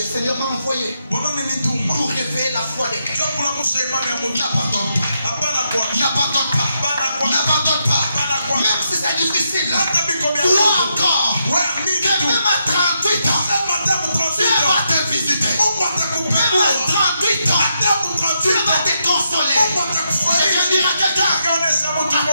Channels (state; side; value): inverted; both; correlation -0.81